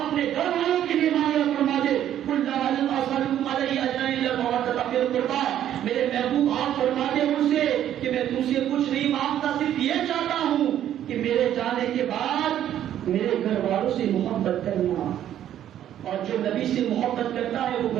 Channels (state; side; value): quieter; left; 11.1 dB